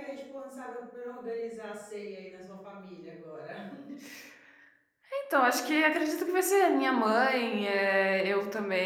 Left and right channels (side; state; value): both; identical; correlation 1.00